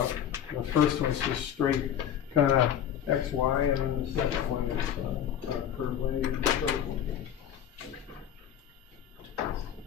The first one is just straight kind of X, Y, and then the second one is curve lane and curve lane.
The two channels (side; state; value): right; quieter; 9.7 dB